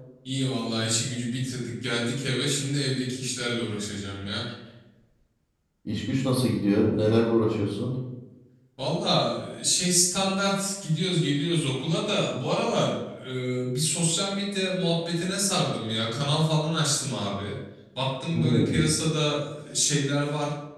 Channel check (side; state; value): both; identical; correlation 1.00